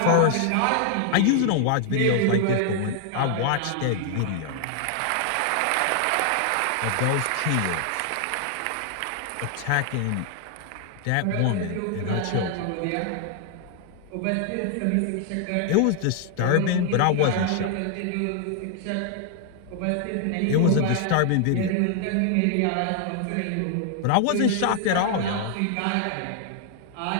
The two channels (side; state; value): both; different; correlation 0.00